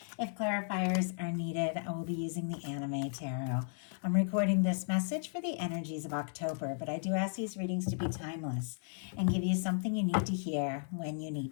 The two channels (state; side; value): silent; right; 55 dB below the other